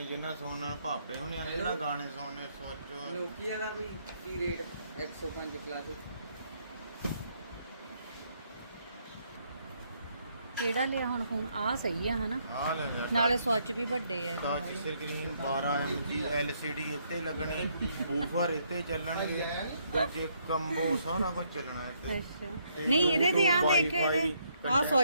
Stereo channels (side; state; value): both; inverted; correlation -0.72